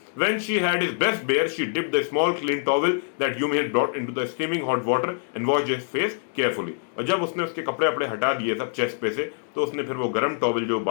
When she had his breast bare, she dipped the small clean towel that Yumi had brought into the steaming hot water and washed his face carefully. और जब उसने उसके कपड़े अपने हटा दिए सब चेस्ट पे से, तो उसने फिर वो गर्म टॉवल जो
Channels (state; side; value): silent; right; digital silence